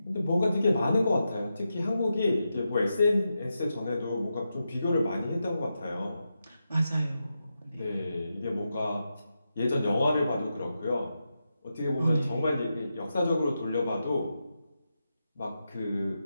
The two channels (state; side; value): inverted; both; correlation -0.88